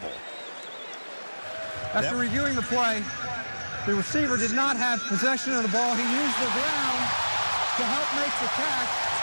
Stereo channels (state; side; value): inverted; both; correlation -1.00